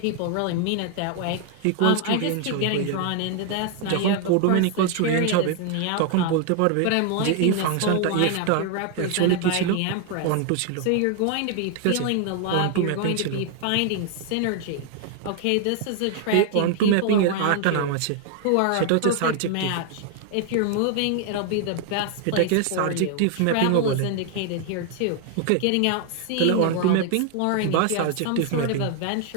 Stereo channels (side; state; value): both; different; correlation 0.00